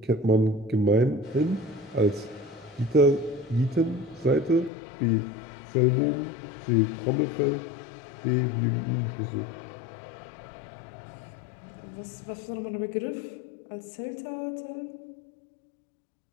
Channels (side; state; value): right; drops out; at 4.7 s